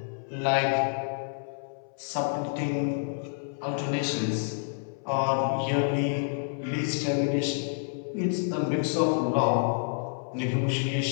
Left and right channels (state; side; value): silent; right; 59 dB below the other